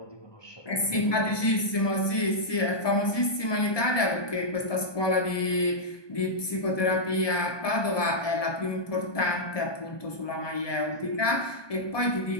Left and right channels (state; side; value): late; right; 1.2 ms